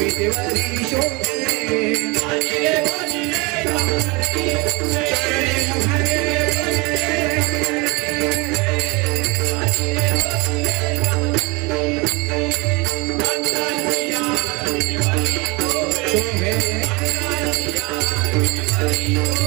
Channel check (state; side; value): quieter; left; 26.8 dB